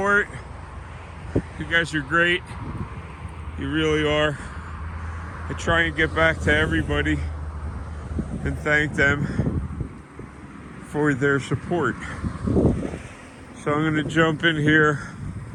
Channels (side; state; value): both; identical; correlation 1.00